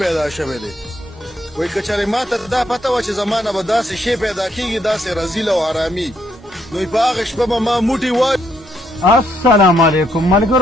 شوی دی. وایي که چېرې ما ته دا پته وه چې زما نه به داسې شی پیدا کېږي داسې رذیل او حرامي نو په هغه شپه به ما موټي وایي. السلام علیکم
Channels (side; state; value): both; normal; correlation 0.74